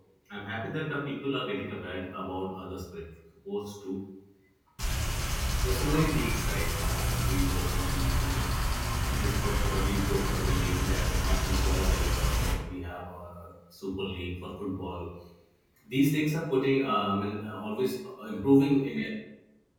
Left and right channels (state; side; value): identical; both; correlation 1.00